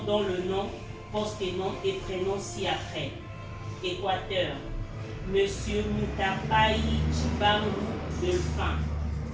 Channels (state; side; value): identical; both; correlation 1.00